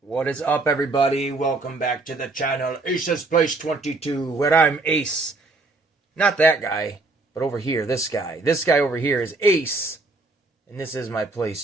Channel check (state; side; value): quieter; left; 3.3 dB